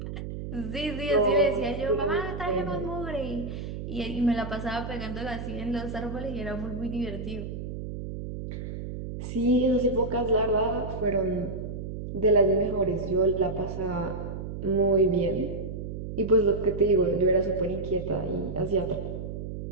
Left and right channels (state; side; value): noise; right; hum, 7 dB below the sound